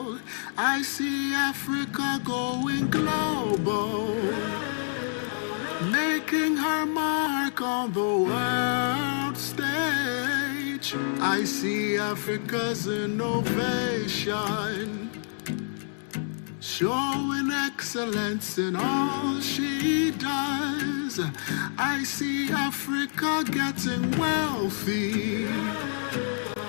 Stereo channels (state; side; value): silent; right; 60 dB below the other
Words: I see Africa going global, making her mark on the world stage. I see Africa's innovation, showing excellence in all she does. I see Africa getting wealthy.